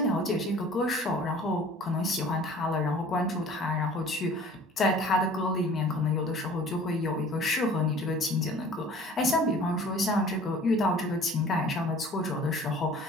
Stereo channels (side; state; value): both; normal; correlation 0.48